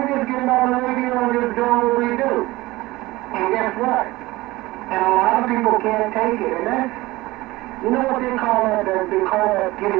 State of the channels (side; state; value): left; quieter; 19.5 dB